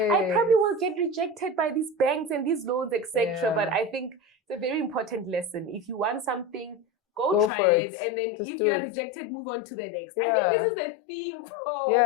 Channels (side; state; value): right; drops out; at 7.5 s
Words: I probably will get rejected by these banks and these loans, etc. But I think it's a very important lesson. If you want something, go try it. And then if you are rejected, move on to the next. I think this is the theme for